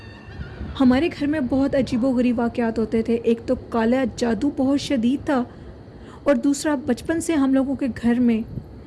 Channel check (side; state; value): both; identical; correlation 1.00